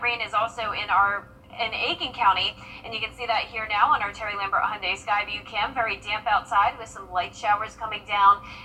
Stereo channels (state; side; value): identical; both; correlation 1.00